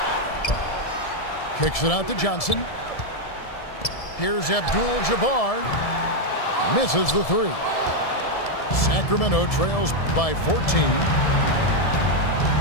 Kicks it out to Johnson. Here's Abdul-Jabbar. Misses the three. Sacramento trails by 14.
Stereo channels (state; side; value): late; right; 1.7 ms